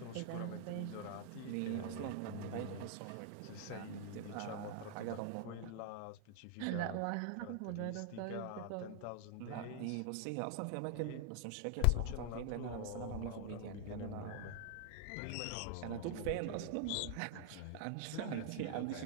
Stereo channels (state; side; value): different; both; correlation -0.01